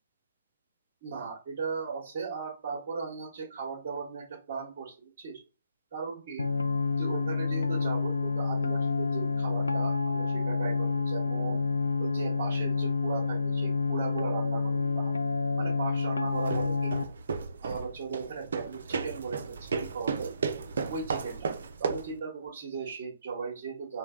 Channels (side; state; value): both; inverted; correlation -0.81